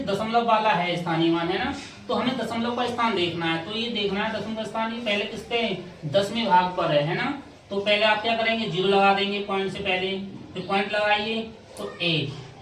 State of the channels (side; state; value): both; identical; correlation 1.00